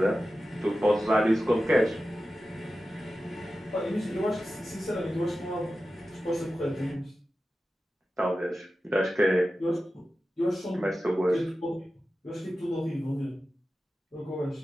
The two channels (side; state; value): both; normal; correlation 0.93